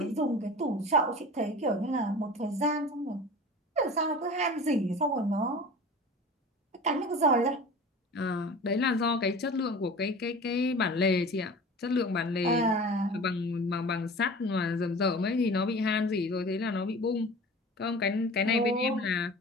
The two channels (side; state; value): both; normal; correlation 0.38